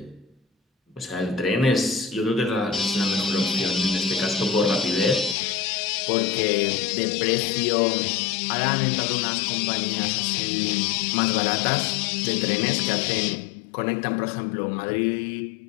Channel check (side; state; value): right; drops out; at 5.4 s